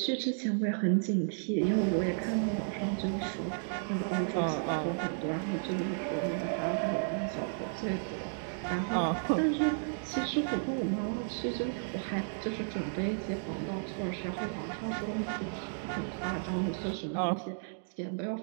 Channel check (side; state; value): left; silent; digital silence